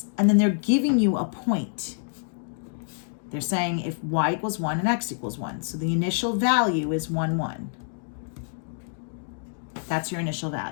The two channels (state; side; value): silent; right; 60 dB below the other